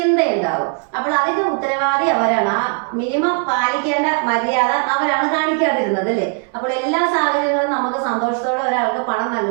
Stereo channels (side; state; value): left; quieter; 39.8 dB